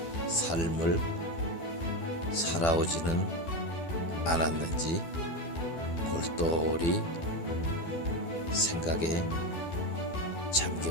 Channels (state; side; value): late; right; 12 ms